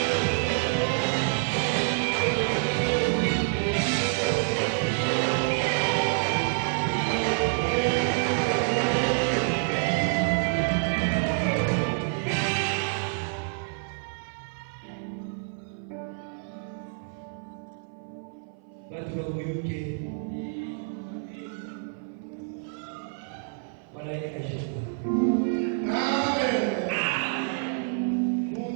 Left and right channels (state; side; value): silent; left; 56 dB below the other